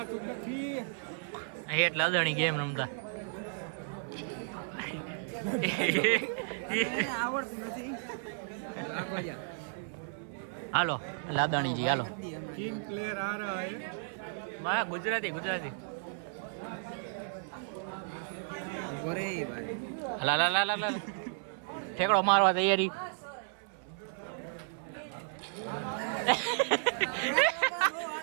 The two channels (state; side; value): silent; left; 55 dB below the other